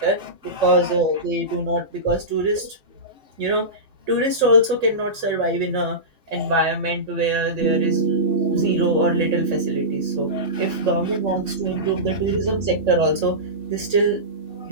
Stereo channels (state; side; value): late; left; 3.6 ms